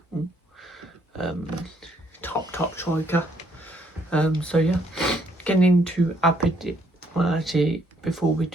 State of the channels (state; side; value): normal; both; correlation 0.69